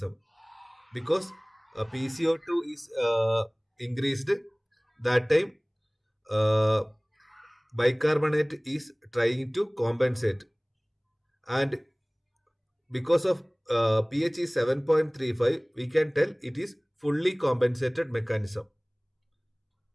because PCO2 is increased. That time uh, bicarbonate is trying to compensate, and because of pH is 7.35, we can tell it is fully compensated mechanism.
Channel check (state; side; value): identical; both; correlation 1.00